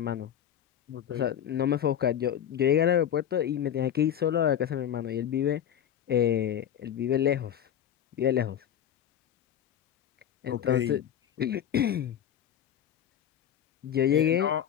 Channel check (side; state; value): right; quieter; 9.8 dB